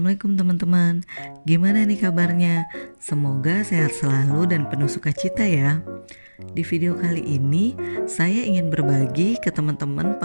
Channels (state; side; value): inverted; both; correlation -1.00